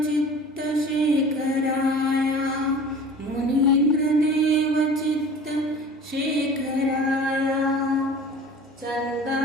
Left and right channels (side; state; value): both; normal; correlation 0.42